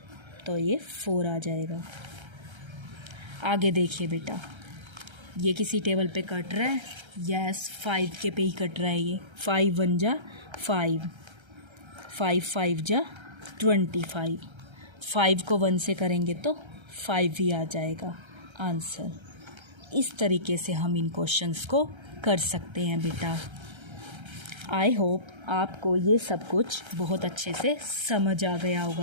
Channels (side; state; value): left; late; 1.3 ms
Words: तो ये 4 आ जाएगा। आगे देखिए बेटा, ये किसी टेबल पे कट रहा है? यस, 5 के पे ही कट रहा है ये। 5 1 जा 5, 5 5 जा 25, 5 को 1 से करेंगे तो 5 ही आ जाएगा आंसर। इस तरीके से हम इन क्वेश्चंस को कर सकते हैं बेटा। आई होप आपको ये सब कुछ बहुत अच्छे से समझ आ गया